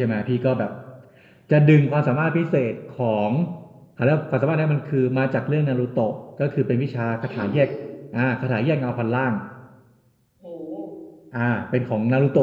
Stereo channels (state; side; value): identical; both; correlation 1.00